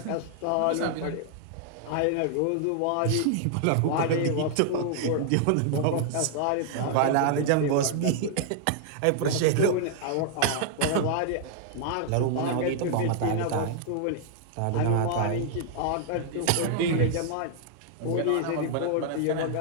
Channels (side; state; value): both; different; correlation -0.01